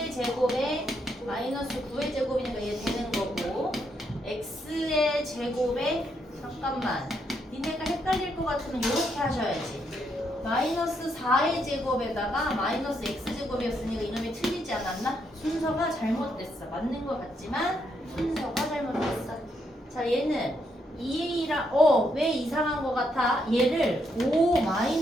제곱에 마이너스 9의 제곱이니까 얘 되는 거고 x의 제곱에 잠깐만 니네가 헷갈릴 것 같으면 이렇게 하셔야지. 마이너스 4의 제곱에다가 마이너스 x제곱이었으니까 이놈이 틀리지 않았나? 순서가 잘못됐어. 맞는 것 같지만 순서가 잘못됐어. 자 얘는 2a라 왜 이상한 것 같아? 얘를 5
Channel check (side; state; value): both; normal; correlation 0.77